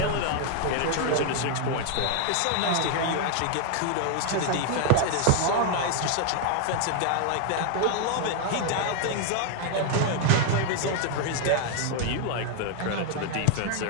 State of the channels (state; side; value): different; both; correlation 0.00